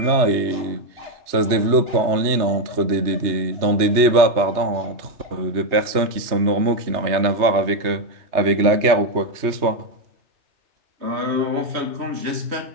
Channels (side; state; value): left; late; 3.2 ms